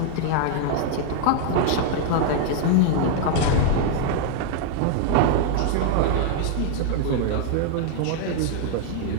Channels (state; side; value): different; both; correlation 0.00